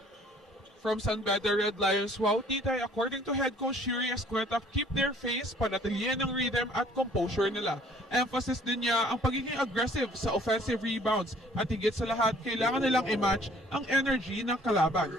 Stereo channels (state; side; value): normal; both; correlation 0.57